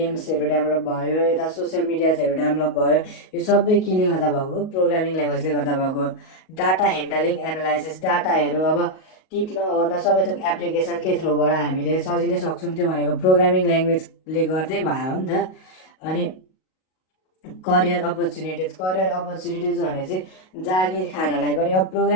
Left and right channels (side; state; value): right; late; 38 ms